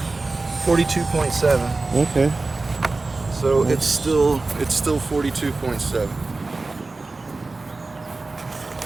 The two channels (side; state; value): left; quieter; 3.5 dB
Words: 42.7. Okay. So it's still 42.7.